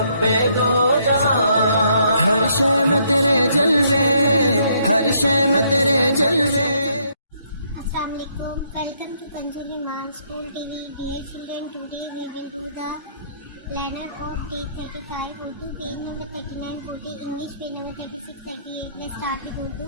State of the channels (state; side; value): inverted; both; correlation -0.70